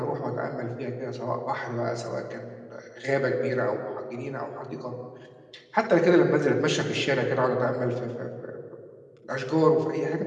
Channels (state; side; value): identical; both; correlation 1.00